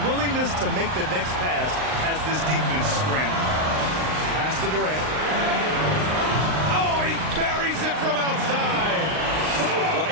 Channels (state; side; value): late; left; 39 ms